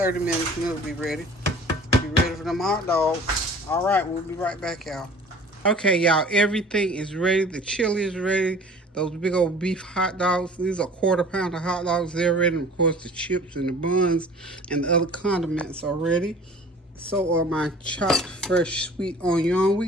minutes and it'll be ready. Be ready for them hot dogs. All right, we'll be right back, y'all. Okay, y'all, everything is ready. The chili is ready. Those big old beef hot dogs, these are 1/4 pound of hot dogs. They're ready. And of course, the chips and the buns and the other condiments are ready. So are my chopped fresh sweet onion. We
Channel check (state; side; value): normal; both; correlation 0.46